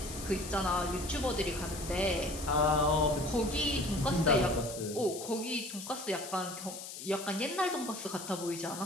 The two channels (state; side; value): noise; left; hiss, 10 dB below the sound